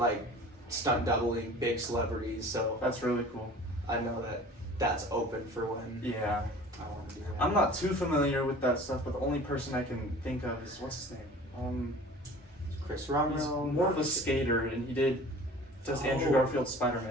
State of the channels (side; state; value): both; normal; correlation 0.44